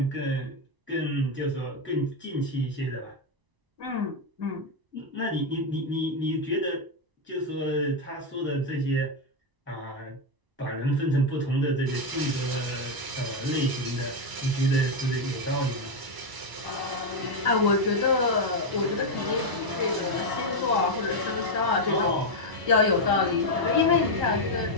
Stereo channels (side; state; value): left; late; 1.0 ms